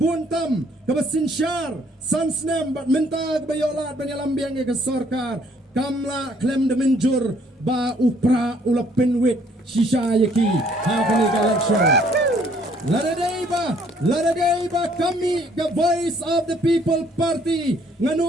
kabasinsyar sansnem bat menta kabayolat banyalambiang ke sarkar. Kamla klem de menjur ba upra ulapin wit shisha yaki hakani election. Laraday ba kami ka Voice of the People Party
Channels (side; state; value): both; normal; correlation 0.63